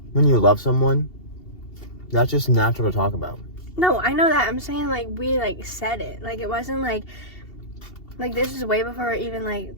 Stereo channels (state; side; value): late; right; 2.7 ms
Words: when you love someone, that's just natural to talk about. No, I know that. I'm saying like we like said it. Like, it wasn't like this is way before we're even like